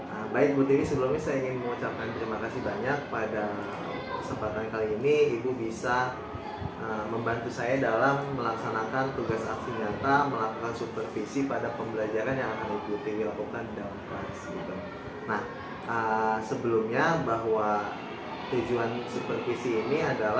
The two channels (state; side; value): identical; both; correlation 1.00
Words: Baik Bu Tiwi, sebelumnya saya ingin mengucapkan terima kasih banyak pada kesempatan kali ini Ibu bisa membantu saya dalam melaksanakan tugas aksi nyata, melakukan supervisi pada pembelajaran yang akan Ibu Tiwi lakukan di dalam kelas gitu. Nah, sebelumnya bahwa tujuan supervisi ini